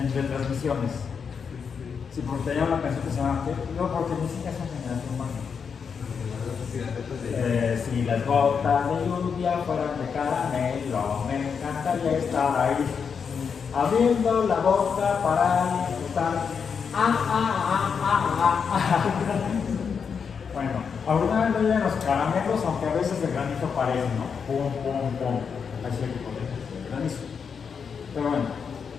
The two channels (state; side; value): quieter; right; 6.3 dB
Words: retransmisiones. Sí, porque tenía una canción que se llama no, porque ni siquiera son generación Barney. Si las gotas de lluvia fueran de caramelo, me encantaría estar ahí, abriendo la boca para estar. Bueno, alguna vez no llegan los caramelos, aunque a veces el granizo parece, ¿no? Pum, pum, pum. Así el granizo. Pero bueno,